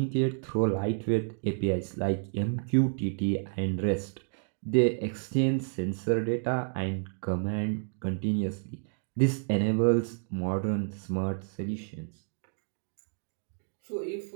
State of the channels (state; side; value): silent; left; digital silence